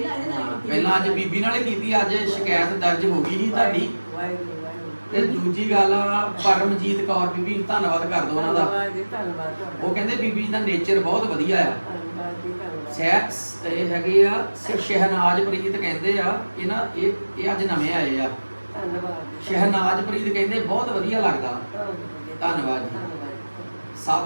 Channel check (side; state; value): both; inverted; correlation -1.00